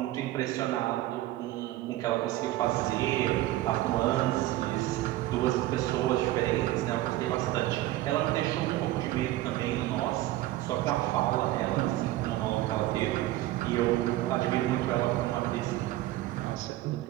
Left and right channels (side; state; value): left; quieter; 15.9 dB